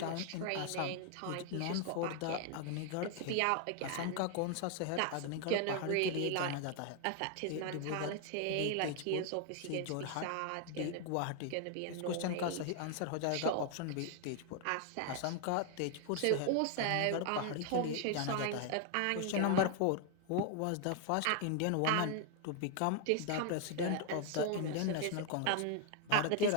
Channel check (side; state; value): both; different; correlation 0.00